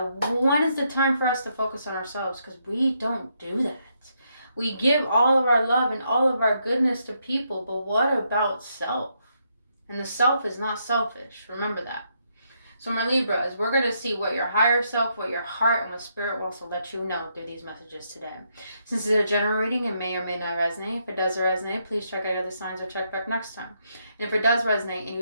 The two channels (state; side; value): inverted; both; correlation -0.77